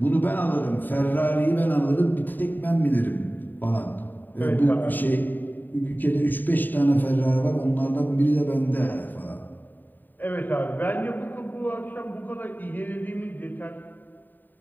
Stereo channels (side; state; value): right; late; 0.089 ms